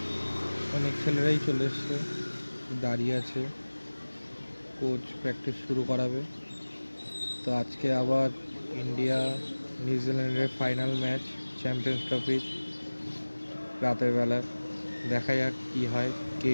অনেক ছেলেরাই চলে এসছে, দাঁড়িয়ে আছে, কোচ প্র্যাকটিস শুরু করাবে। তো আজকে আবার ইন্ডিয়া নিউজিল্যান্ডের ফাইনাল ম্যাচ, চ্যাম্পিয়ন্স ট্রফির রাতের বেলা। দেখা যাক কী হয়, কে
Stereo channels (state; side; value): inverted; both; correlation -1.00